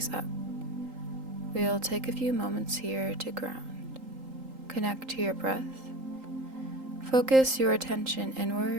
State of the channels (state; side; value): late; left; 3.8 ms